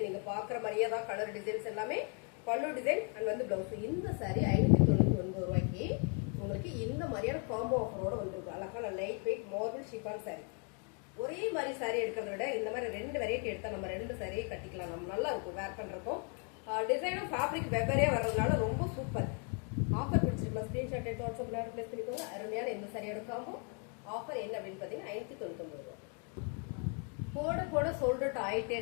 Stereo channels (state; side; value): quieter; right; 39.3 dB